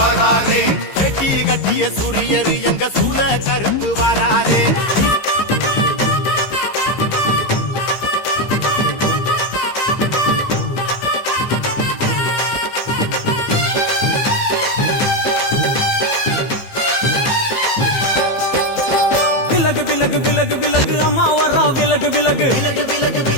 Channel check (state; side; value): late; right; 15 ms